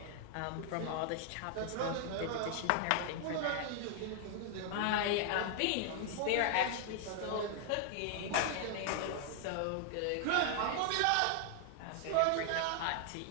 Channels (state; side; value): different; both; correlation 0.00